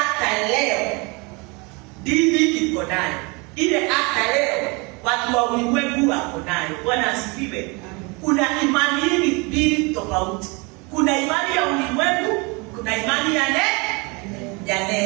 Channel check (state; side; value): quieter; left; 28.5 dB